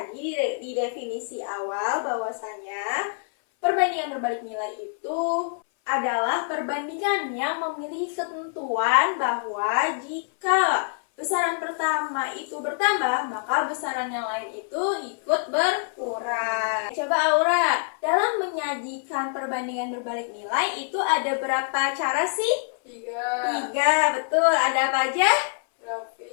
di definisi awal bahwasanya perbandingan berbalik nilai itu adalah perbandingan yang memiliki ketentuan bahwa jika besaran pertama itu bertambah, maka besaran yang lain itu ikut berkurang. Coba Aura, dalam menyajikan perbandingan berbalik nilai itu ada berapa cara sih? 3. 3, betul. Ada apa aja?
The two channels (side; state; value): right; silent; 59 dB below the other